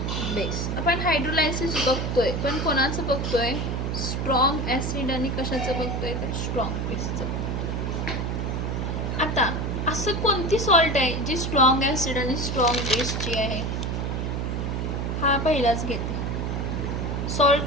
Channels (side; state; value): right; noise; hum, 1 dB below the sound